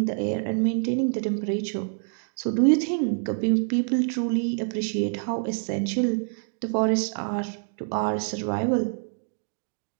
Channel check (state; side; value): silent; left; 57 dB below the other